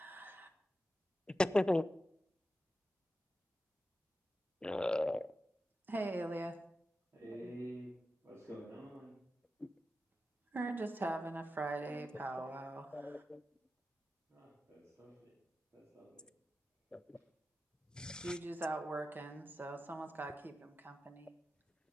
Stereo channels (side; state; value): both; normal; correlation 0.91